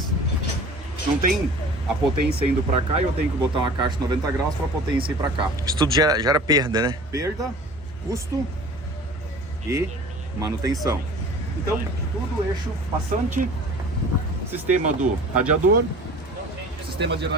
Não tem a potência indo para cá e eu tenho que botar uma caixa de 90 graus para a potência ir para cá. Isso tudo gera perda, né? Perda, custo e manutenção. Então, tudo eixo passante, sistema do radiador, sistema de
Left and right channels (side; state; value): both; normal; correlation 0.43